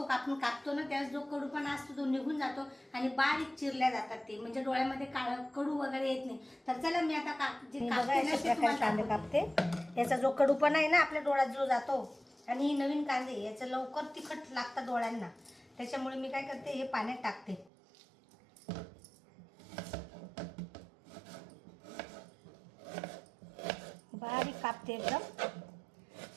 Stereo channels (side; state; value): left; drops out; at 17.7 s